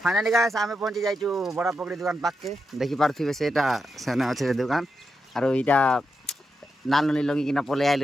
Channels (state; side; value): normal; both; correlation 0.86